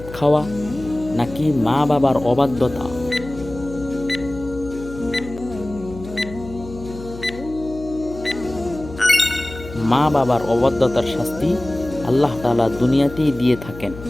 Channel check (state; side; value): noise; left; hum, 14 dB below the sound